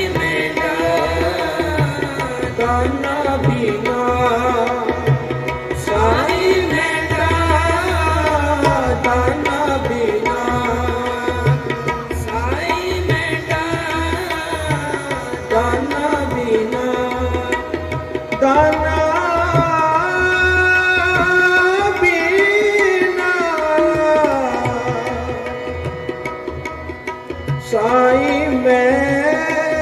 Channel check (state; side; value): identical; both; correlation 1.00